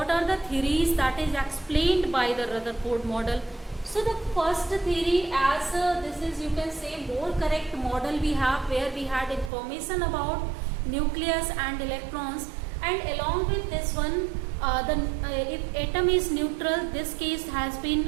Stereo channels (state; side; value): drops out; left; at 9.5 s